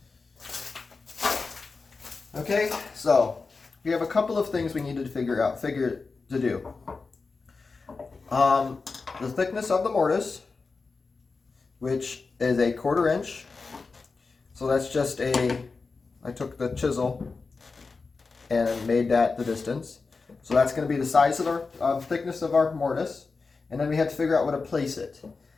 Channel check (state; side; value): quieter; right; 4.3 dB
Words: Okay, so we have a couple of things we need to figure to do. The thickness of the mortise, which is a 1/4 inch. So that's just I took the chisel and made that the distance. So that's going to be the size of our thickness of our mortise. And then we had to figure out where to place it.